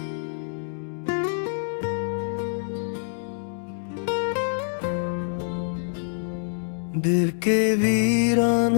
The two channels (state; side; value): silent; right; digital silence